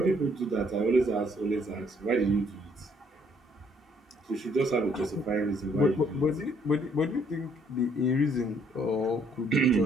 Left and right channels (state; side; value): normal; both; correlation 0.66